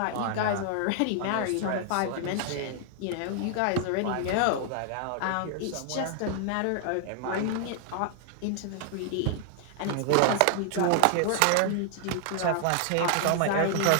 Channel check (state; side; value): different; both; correlation 0.00